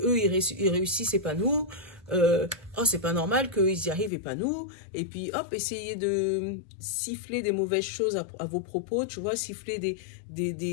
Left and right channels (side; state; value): right; drops out; at 4.1 s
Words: ils réussissent et pas nous. Oh, c'est pas normal qu'ils y arrivent et pas nous. Et puis, hop, essayez de siffler des mauvaises choses à vos propos, tu vois, siffler